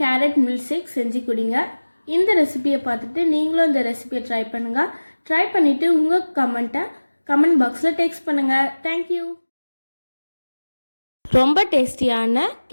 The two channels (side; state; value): both; inverted; correlation -1.00